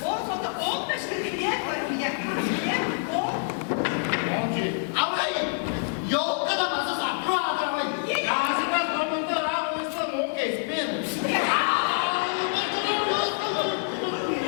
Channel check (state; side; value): silent; right; digital silence